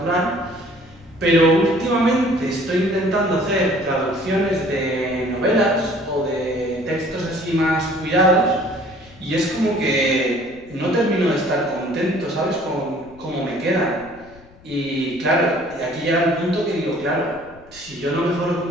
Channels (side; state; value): left; noise; rumble, 24 dB below the sound